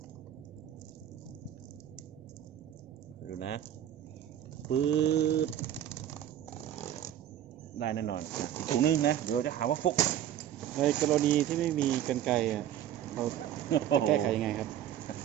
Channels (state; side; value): quieter; left; 11.2 dB